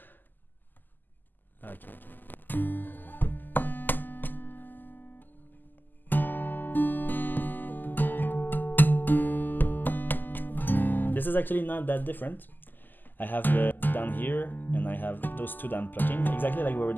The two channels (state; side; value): late; right; 0.088 ms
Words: Okay. This is actually not that different. I have the down here and I have those 2 down plucking, exactly like we were